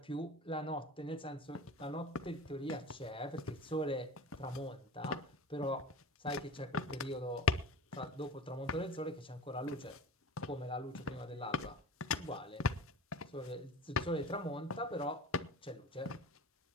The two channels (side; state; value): both; normal; correlation 0.35